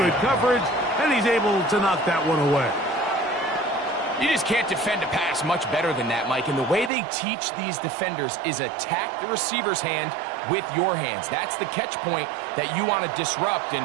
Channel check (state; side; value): drops out; left; at 6.9 s